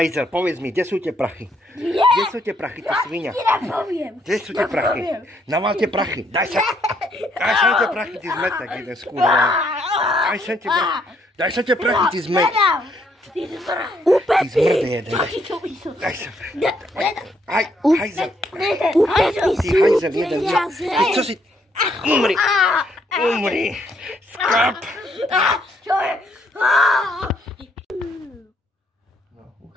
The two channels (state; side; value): normal; both; correlation 0.71